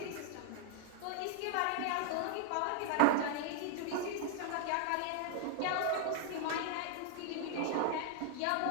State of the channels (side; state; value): both; different; correlation 0.00